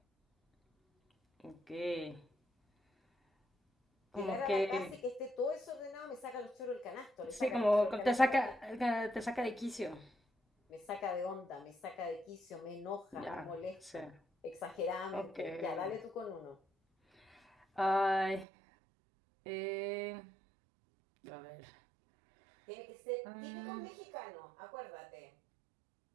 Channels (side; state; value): left; drops out; at 18.4 s